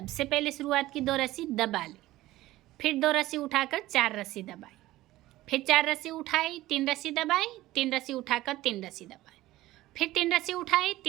पहले शुरुआत की 2 रस्सी दबा ली, फिर 2 रस्सी उठाकर 4 रस्सी दबाई, फिर 4 रस्सी उठाई, 3 रस्सी दबाई, 3 रस्सी उठाकर 3 रस्सी दबाई, फिर 3 रस्सी उठाई,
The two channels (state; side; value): quieter; left; 16.6 dB